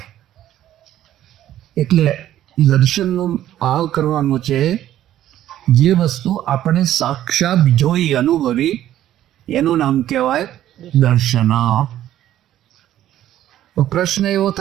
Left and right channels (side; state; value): left; quieter; 12.5 dB